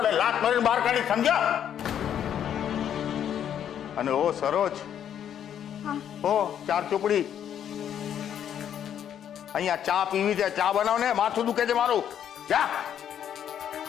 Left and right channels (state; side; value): quieter; right; 9.5 dB